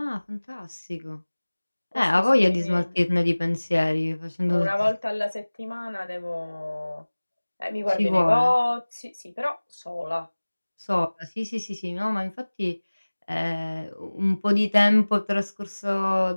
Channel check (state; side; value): inverted; both; correlation -1.00